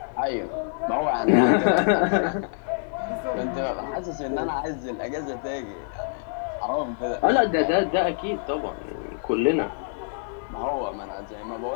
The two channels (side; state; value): right; silent; 61 dB below the other